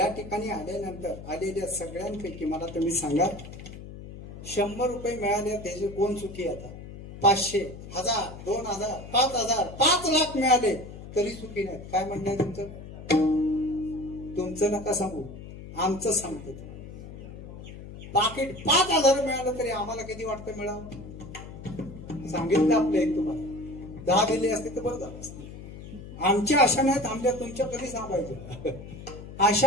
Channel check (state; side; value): noise; left; hum, 13 dB below the sound